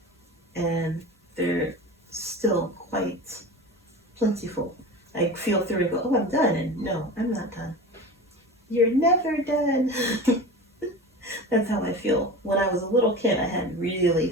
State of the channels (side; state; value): both; normal; correlation 0.31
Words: and they're still quite plentiful. I feel through and go, oh, I'm done, and no, I'm not done. You're never done. That's how I feel. When I was a little kid, I had